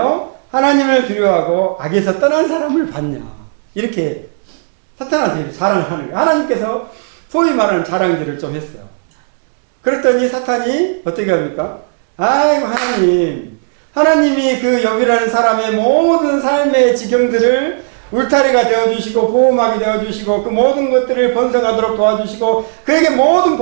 하나님을 두려워하고 악에서 떠난 사람을 봤냐? 이렇게 사탄한테 자랑을 하는 거예요. 하나님께서 소위 말하는 자랑들을 좀 했어요. 그랬더니 사탄이 어떻게 합니까? 아이고 하나님이 그 욥이라는 사람의 모든 삶의 지경들을 울타리가 되어주시고 보호막이 되어주시고 그 모든 것들을 번성하도록 도와주시고 그에게 모든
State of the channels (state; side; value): silent; left; digital silence